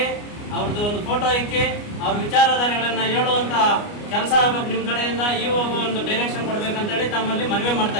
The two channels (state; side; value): late; right; 29 ms